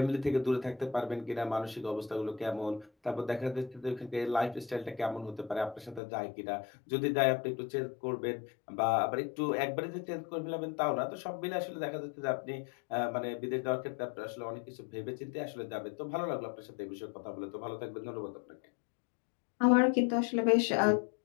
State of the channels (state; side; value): drops out; right; at 6.0 s